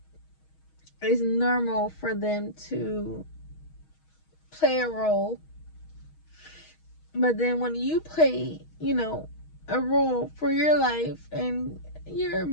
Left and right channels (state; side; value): late; right; 6.3 ms